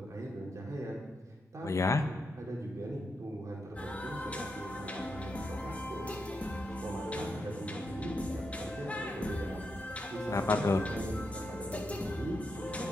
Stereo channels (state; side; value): normal; both; correlation 0.84